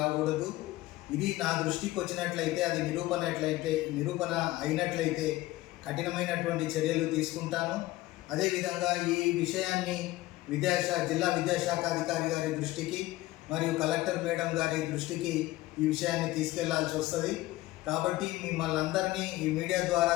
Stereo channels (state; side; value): quieter; right; 17.7 dB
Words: ఇది నా దృష్టికి వచ్చినట్లయితే, అది నిరూపణ అయినట్లయితే కఠినమైనటువంటి చర్యలు తీసుకుంటాను. అదేవిధంగా ఈ విషయాన్ని జిల్లా విద్యాశాఖ అధికారి గారి దృష్టికి మరియు కలెక్టర్ మేడం గారి దృష్టికి ఈ విషయాన్ని తీసుకెళ్లాల్సి వస్తుంది. కాబట్టి మిమ్మల్ని అందరినీ ఈ మీడియా ద్వారా